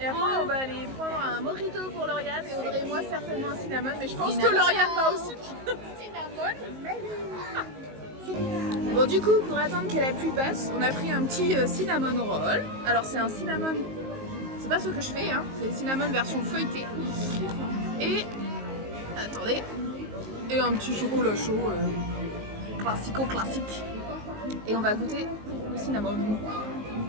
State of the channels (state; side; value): late; left; 19 ms